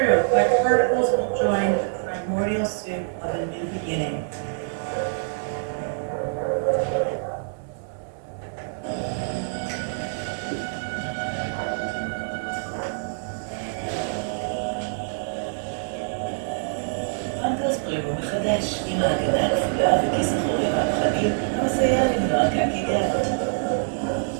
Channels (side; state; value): left; silent; 62 dB below the other